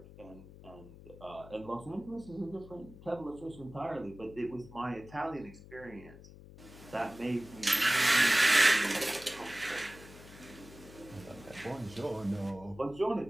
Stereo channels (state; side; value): noise; left; hum, 18 dB below the sound